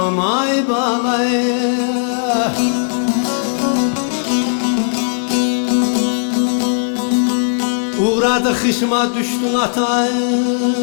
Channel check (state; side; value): silent; right; 68 dB below the other